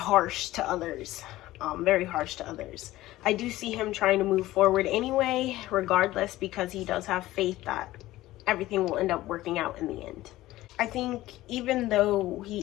to others, very harsh to others. I do see him trying to move forward anyway, regardless, because he does have faith that everything will end up working out in the end. I think even though he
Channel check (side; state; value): right; quieter; 16.4 dB